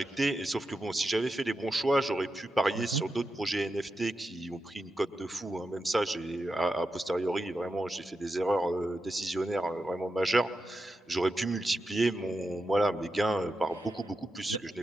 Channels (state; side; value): normal; both; correlation 0.88